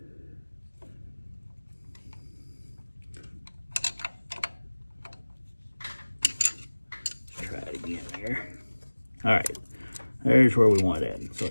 Let's try it again there. All right, there's where we want it at. So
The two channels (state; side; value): inverted; both; correlation -1.00